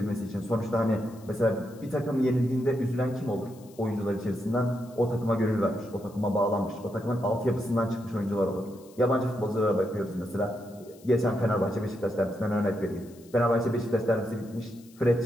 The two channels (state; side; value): noise; left; hiss, 26 dB below the sound